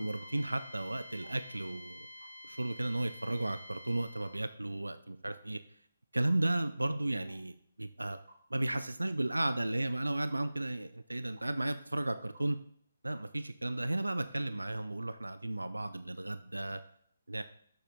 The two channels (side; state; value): both; inverted; correlation -0.99